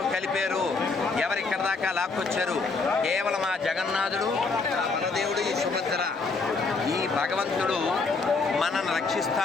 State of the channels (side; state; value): right; quieter; 4.1 dB